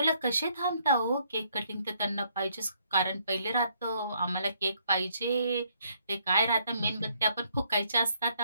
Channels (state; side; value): inverted; both; correlation -0.70